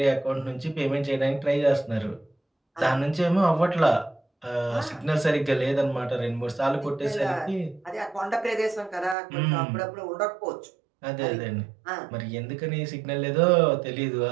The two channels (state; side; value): drops out; left; at 9.2 s